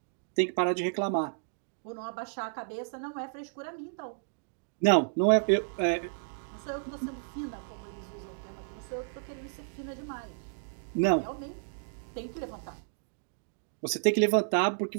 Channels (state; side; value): silent; left; digital silence